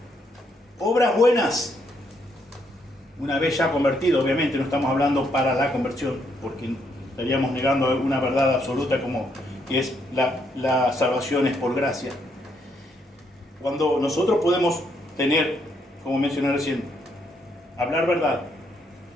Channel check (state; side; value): normal; both; correlation 0.74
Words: obras buenas. Una vez ya convertido, obviamente no estamos hablando para la conversión, porque estaríamos negando una verdad absoluta como que es la salvación es por gracia. Cuando nosotros podemos tener, como mencioné recién, hablar verdad,